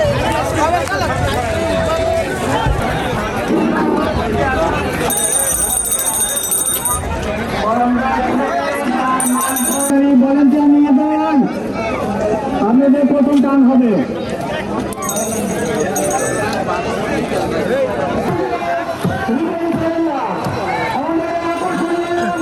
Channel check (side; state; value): both; identical; correlation 1.00